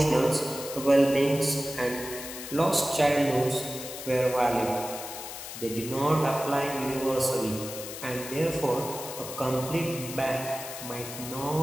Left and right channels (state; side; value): noise; left; hiss, 10 dB below the sound